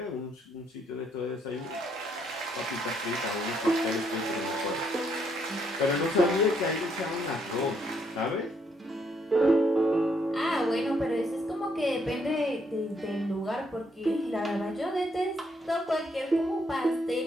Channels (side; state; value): both; normal; correlation 0.72